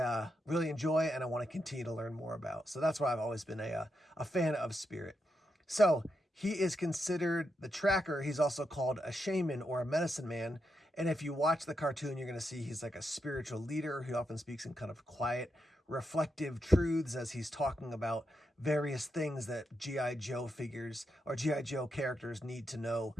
really enjoy and I want to continue to learn more about. So that's why I've always been a fan of Spirit. So he is considered the tracker. He's also called a shaman or a medicine man. And if you watch the cartoon, you're going to see he's like a spiritual leader who often speaks in kind of quiet, reflective truths as he's talking about various things that G.I. Joe figures or G.I. Joe characters need to know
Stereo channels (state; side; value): normal; both; correlation 0.84